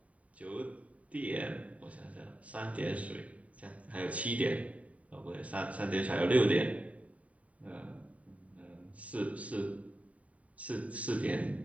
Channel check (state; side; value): late; left; 0.068 ms